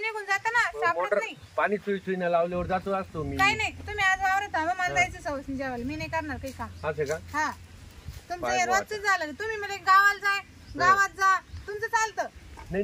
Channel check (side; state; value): both; identical; correlation 1.00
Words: जातं ना, सापडत मोटर नाही. पाणी सुईनं लावल्यावर जातो असतो मी. काही नाही, तुम्ही आज वावरत थांबा, मला जायचं सवस नाही जेवायला. मी नाही करणार काही काम. असं का? हा तुमचं हे रोजच झालं. तुम्ही म्हणजे गावाला जाय, गावात जा, तुमचं चालतं.